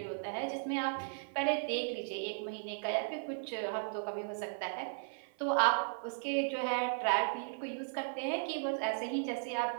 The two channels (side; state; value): left; silent; 54 dB below the other